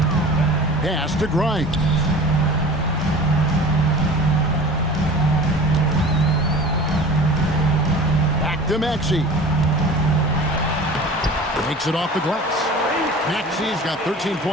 Pass to Grimes. Back to Maxey. Makes it off the glass. Maxey's got 13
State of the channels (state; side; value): normal; both; correlation 0.40